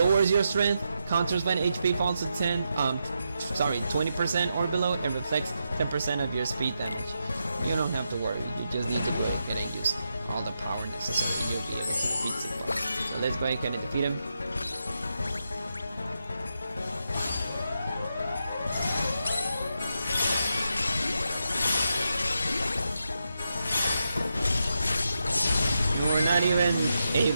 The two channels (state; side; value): inverted; both; correlation -0.85